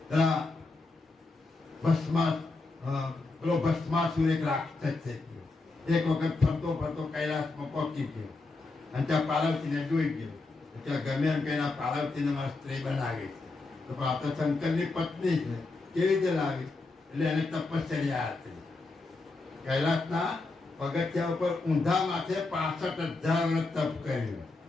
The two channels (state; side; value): quieter; right; 3.5 dB